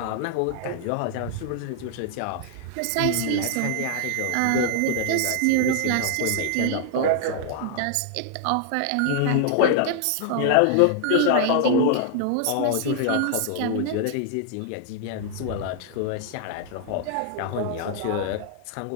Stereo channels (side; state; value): both; different; correlation 0.00